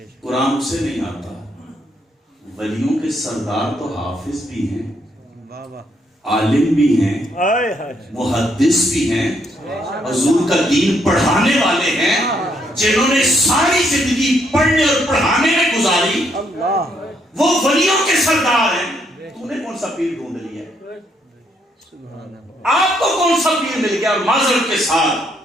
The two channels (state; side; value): normal; both; correlation 0.73